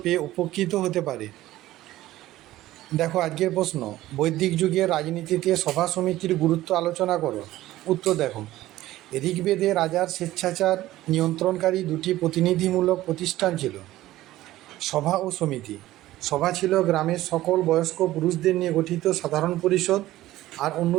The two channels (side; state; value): left; quieter; 15.6 dB